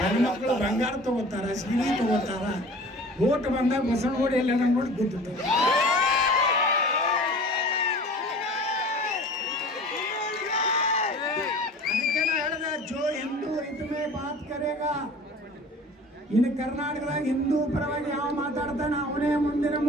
ಬಂಗಾರ ತಗೋತಾರ, ಸೀರೆ ತಗೋತಾರ. ಓಟ್ ಬಂದಾಗ ಬಸವನಗುಡಿ ಎಲ್ಲ ನೋಡಿ ಗೊತ್ತಿತ್ತು. ಅದಕ್ಕೆ ನಾ ಹೇಳಿದೆ, ಜೋ ಹಿಂದೂ ಇದ್ಮೇ ಬಾತ್ ಕರೇಗಾ. ಇನ್ನು ಕರ್ನಾಟಕದಾಗ ಹಿಂದೂ ಪರವಾಗಿ ಯಾವ ಮಾತಾಡ್ತಾನೆ ಅವನೇ ಮುಂದಿನ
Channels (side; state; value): both; normal; correlation 0.43